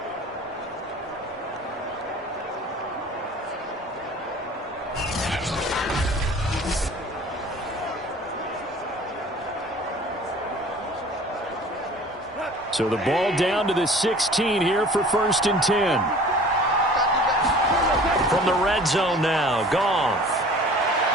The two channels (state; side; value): normal; both; correlation 0.46